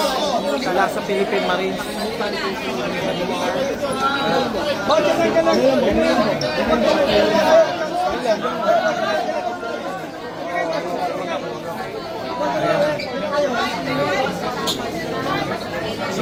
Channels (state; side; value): identical; both; correlation 1.00